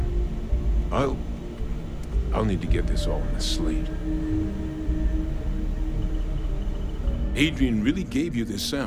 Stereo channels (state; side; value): identical; both; correlation 1.00